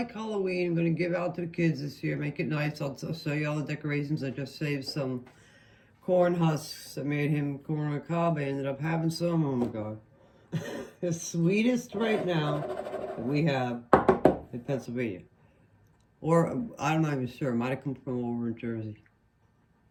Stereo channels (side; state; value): both; identical; correlation 1.00